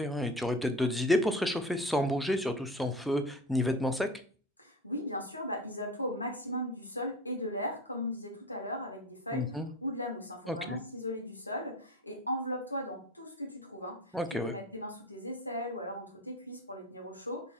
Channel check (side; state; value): both; normal; correlation 0.34